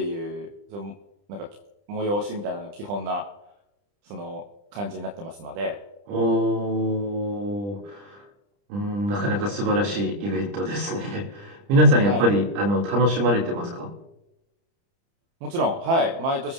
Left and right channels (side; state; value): left; late; 30 ms